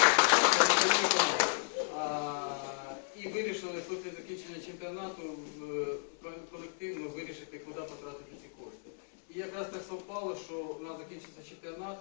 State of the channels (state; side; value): silent; right; digital silence